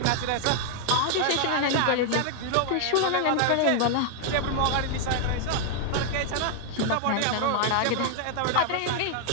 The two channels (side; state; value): both; different; correlation 0.00